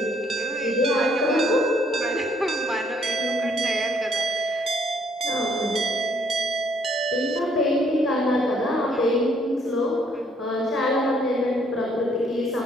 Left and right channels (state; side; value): normal; both; correlation 0.66